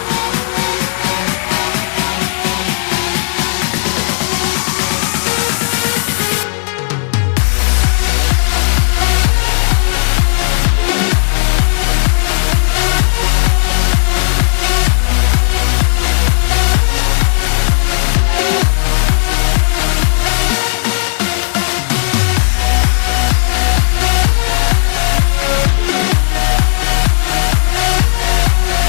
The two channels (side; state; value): right; silent; digital silence